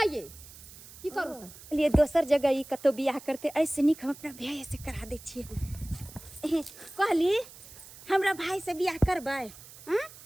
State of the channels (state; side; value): noise; right; hiss, 18 dB below the sound